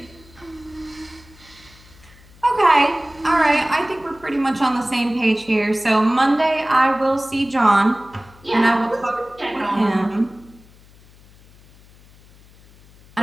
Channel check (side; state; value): left; noise; hum, 25 dB below the sound